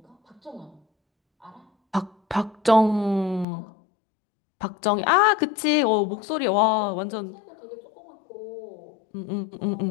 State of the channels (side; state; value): right; drops out; at 3.5 s